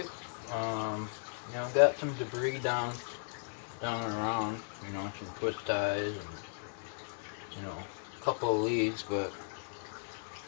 You know, got some debris down and around. You know, some twist ties and you know, a couple of leads, but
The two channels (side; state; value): right; silent; digital silence